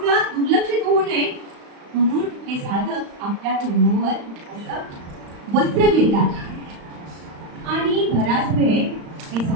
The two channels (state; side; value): late; left; 35 ms